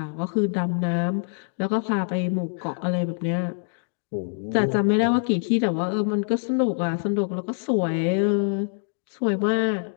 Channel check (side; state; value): right; silent; digital silence